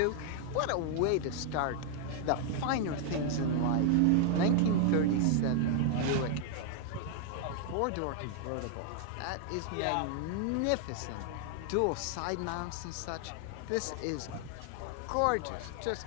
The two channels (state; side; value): different; both; correlation 0.00